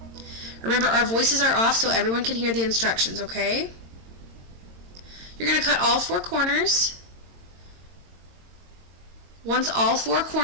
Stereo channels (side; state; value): left; late; 22 ms